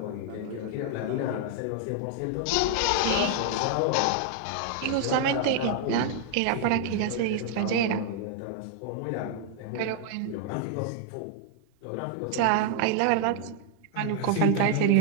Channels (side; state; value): both; different; correlation -0.01